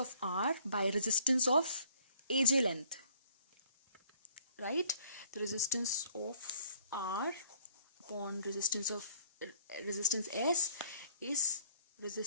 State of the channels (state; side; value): inverted; both; correlation -0.59